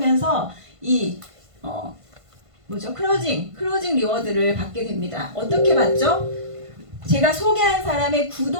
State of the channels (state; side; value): late; left; 1.5 ms